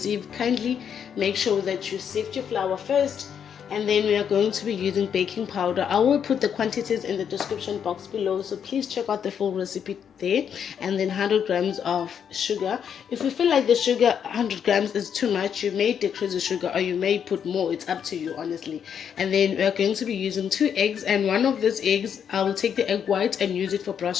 kindly make sure that you sift your flour first. And then we are going to be using baking powder. I will put the quantities in the description box below, so please check out the full recipe there. And then 100 grams of sugar. If you feel like the sugar 100 grams is too much, you may decrease the sugar or you may put more. It's up to you, honestly. And then we are going to be using 2 eggs, and one of these eggs I will take the egg white and use it for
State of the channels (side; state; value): right; quieter; 8.0 dB